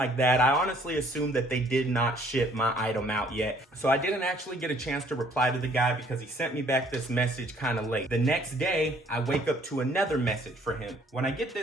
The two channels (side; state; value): both; normal; correlation 0.61